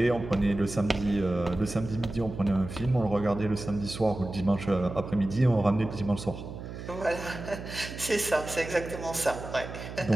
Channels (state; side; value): noise; right; hum, 10 dB below the sound